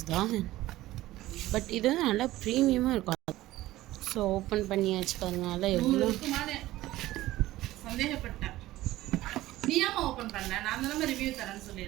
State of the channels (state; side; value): quieter; left; 16.3 dB